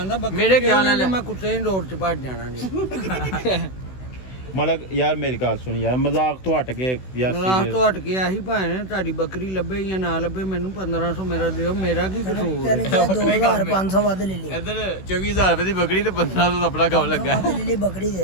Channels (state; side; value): late; right; 16 ms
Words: ਬੱਕਰੀ ਮੇਰੇ ਖਿਆਲ ਨਾਲ ਮੈਂ ਕੁੱਤੇ ਦੀ ਰੋਡ 'ਚ ਭੱਜ ਜਾਣਾ ਜੀ ਮਤਲਬ ਯਾਰ ਮੇਰੀ ਗੱਲ ਸੁਣ ਯਾਰ ਮਜ਼ਾਕ ਤੋਂ ਹਟ ਕੇ ਯਾਰ ਰਾਤ serious। ਤੋਂ ਹਟ ਕੇ ਆਹੀ ਭਾਣੇ ਤੁਹਾਡੀ ਬੱਕਰੀ ਲੱਭੇ ਜਾਂ ਨਾ ਲੱਭੇ ਮੈਨੂੰ 1500 ਮੇਰਾ ਦਿਓ ਮੇਰਾ ਕੀ ਕਸੂਰ ਤੈਨੂੰ ਕਿਹਾ 2500 ਵੱਧ ਲੈ ਲਈ ਇੱਧਰ 24000 ਰੁਪਏ ਦੀ ਬੱਕਰੀ ਤੇ 1500 ਦਾ ਆਪਣਾ ਕੰਮ ਲੱਗਾ ਵੱਧ ਲੈ ਲਈ ਬੱਕਰੀ ਦੇ